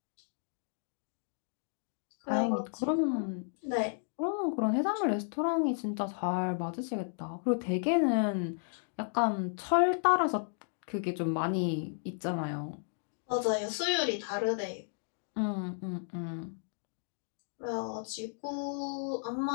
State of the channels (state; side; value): silent; right; digital silence